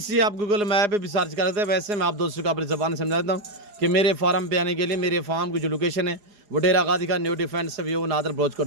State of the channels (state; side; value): late; left; 4.8 ms